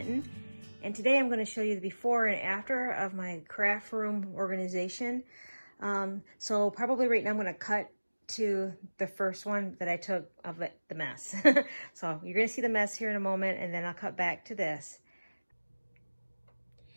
and today I'm going to show you the before and after of my craft room organization. So probably right now I'm going to cut to the first one that I took of the mess. So you're going to see the mess here in a moment, and then I'll cut back to this.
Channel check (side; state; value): both; inverted; correlation -1.00